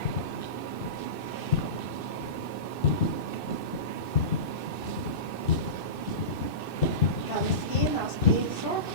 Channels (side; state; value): right; late; 2.6 ms